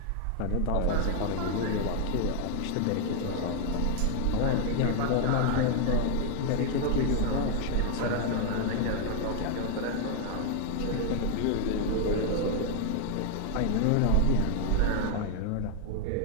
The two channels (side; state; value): both; different; correlation 0.00